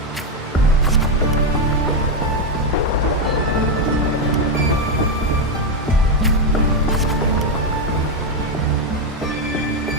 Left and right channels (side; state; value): both; normal; correlation 0.06